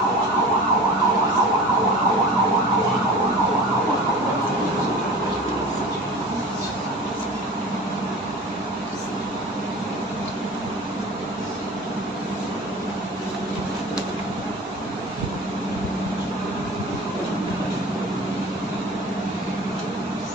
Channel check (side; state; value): both; normal; correlation 0.38